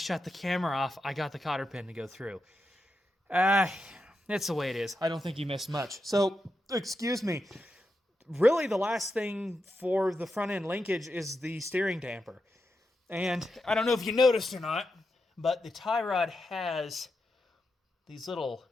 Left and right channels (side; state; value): both; normal; correlation 0.87